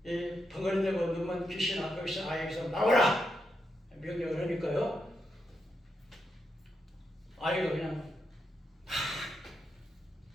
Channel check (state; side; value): normal; both; correlation 0.83